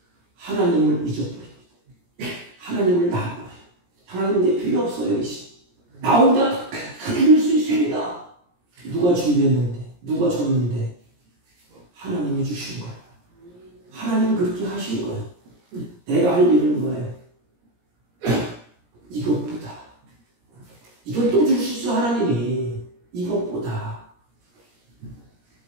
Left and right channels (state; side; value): late; left; 17 ms